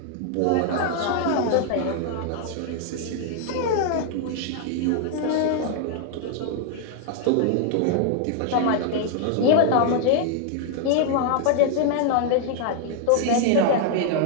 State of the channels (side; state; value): both; different; correlation 0.00